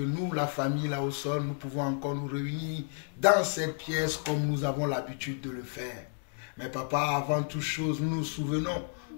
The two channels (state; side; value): silent; right; 57 dB below the other